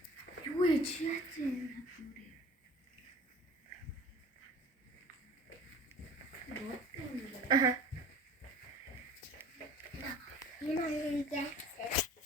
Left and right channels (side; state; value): both; normal; correlation 0.45